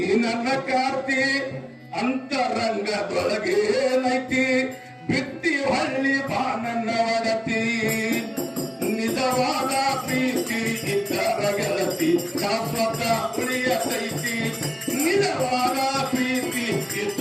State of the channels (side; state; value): both; identical; correlation 1.00